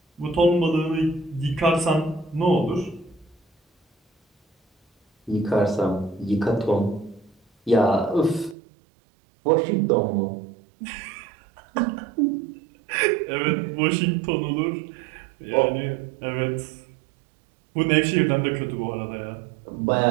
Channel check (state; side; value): drops out; left; at 8.6 s